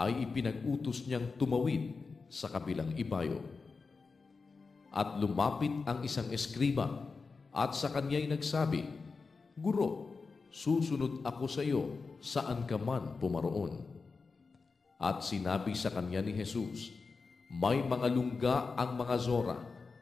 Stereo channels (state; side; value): quieter; right; 4.5 dB